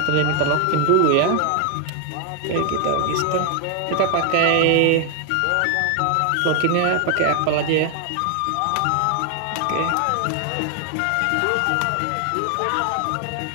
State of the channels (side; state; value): both; different; correlation 0.00